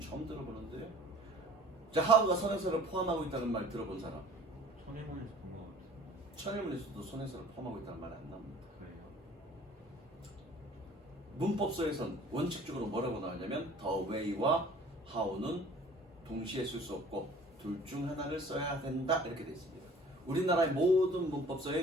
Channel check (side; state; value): both; normal; correlation 0.49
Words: 처음 들어보는데요. 자, how가 선행사를 포함하고 있다는 말 들어본 사람? 천일문에서 본 것 같아요. 천일문에서도 선행사를 포함하고 있다는 말 안 나옵니다. 그래요? 문법서에선 원칙적으로 뭐라고 나오냐면 the way와 how는 동시에 쓸 수 없고 둘 중 하나를 써야 된다 이렇게 되어 있습니다. 우리나라의 모든